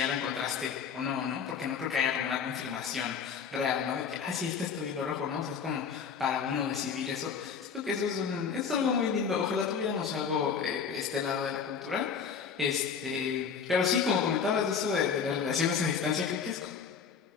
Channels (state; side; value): quieter; right; 6.5 dB